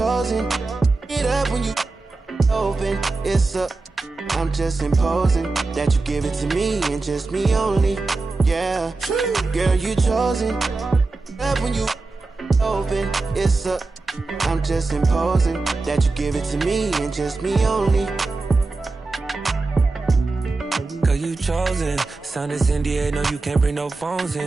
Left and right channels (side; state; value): left; quieter; 3.6 dB